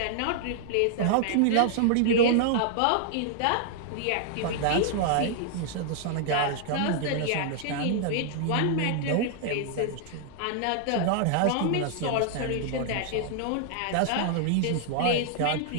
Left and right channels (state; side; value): different; both; correlation 0.00